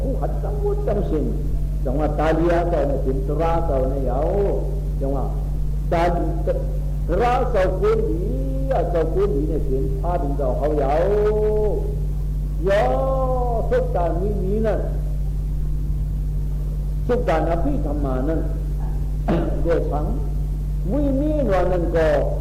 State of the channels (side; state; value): both; identical; correlation 1.00